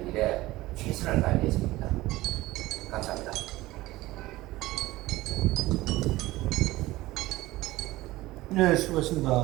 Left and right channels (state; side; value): quieter; left; 18.2 dB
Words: 일에 최선을 다할 예정입니다. 감사합니다. 네,